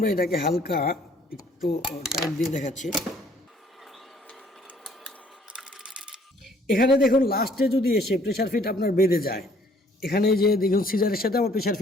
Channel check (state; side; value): normal; both; correlation 0.60